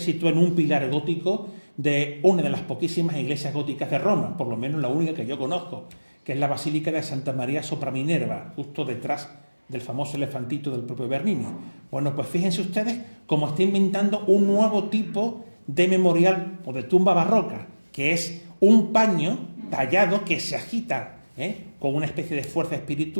en un pilar gótico de una de las poquísimas iglesias góticas de Roma, por lo menos la única que yo conozco, que es la Basílica de Santa María sopra Minerva, justo detrás del famoso elefantito del propio Bernini. Bueno, pues fíjense ustedes cómo está inventando un nuevo tipo de memorial o de tumba barroca, que es un paño tallado que se agita con una especie de fuerza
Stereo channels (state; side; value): inverted; both; correlation -1.00